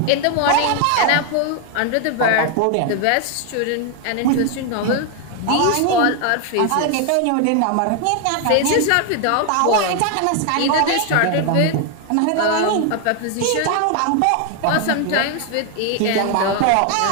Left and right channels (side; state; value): both; different; correlation 0.01